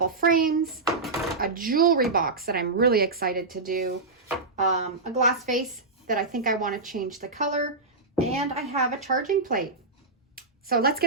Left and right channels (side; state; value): left; quieter; 3.6 dB